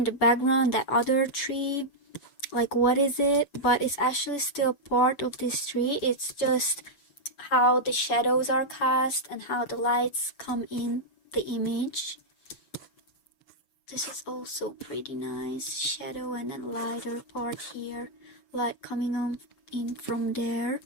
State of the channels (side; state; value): right; late; 7.0 ms